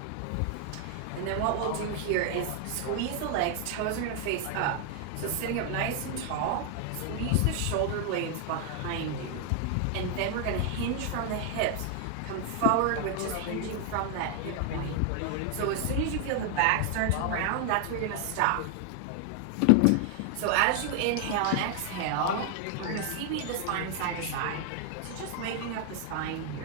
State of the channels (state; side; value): different; both; correlation 0.00